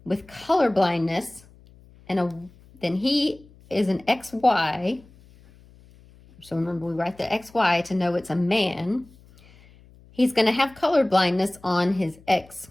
with color blindness, then he is an XY. So remember, we write the XY to know it's a man. He's going to have color blindness on his X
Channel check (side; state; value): left; noise; hum, 26 dB below the sound